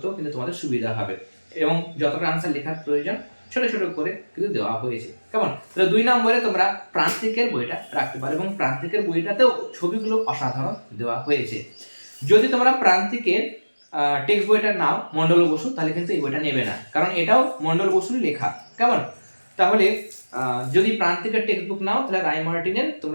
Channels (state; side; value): inverted; both; correlation -1.00